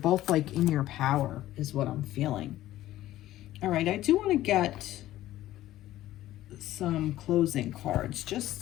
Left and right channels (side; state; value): right; quieter; 14.5 dB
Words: like in your power is what I'm feeling. All right, I do want to get some closing cards.